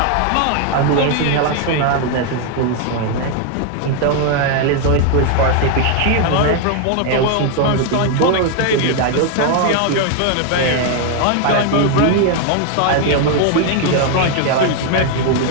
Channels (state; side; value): different; both; correlation 0.01